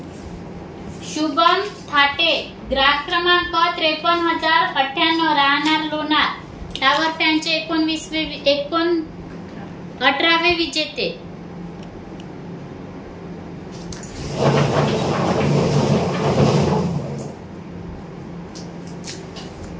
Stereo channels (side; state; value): both; identical; correlation 1.00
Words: शुभम थाटे, ग्राहक क्रमांक 53,098, राहणार लोणार, टावर फॅनचे 18वे विजेते.